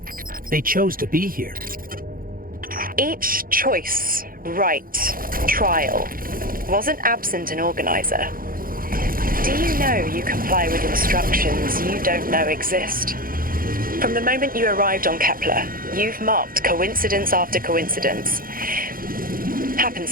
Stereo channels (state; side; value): late; left; 0.41 ms